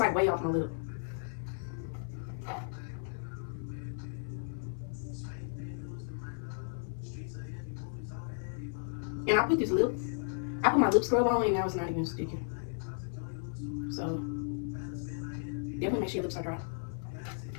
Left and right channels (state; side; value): silent; right; 55 dB below the other